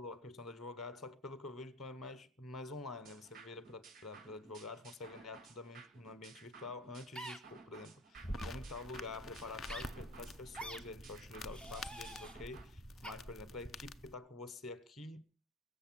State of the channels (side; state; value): both; normal; correlation 0.41